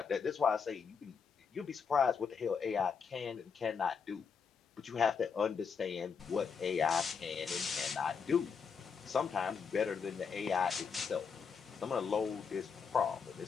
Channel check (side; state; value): right; quieter; 5.9 dB